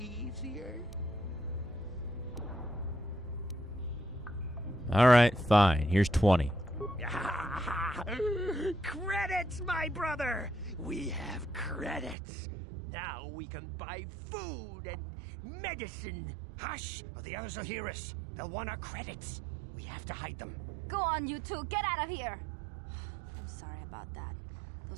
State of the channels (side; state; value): left; drops out; at 12.2 s